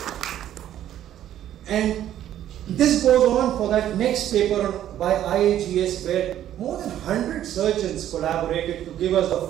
And this goes on for that next paper by IAGS, where more than 100 surgeons collaborated to give us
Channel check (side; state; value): left; quieter; 11.6 dB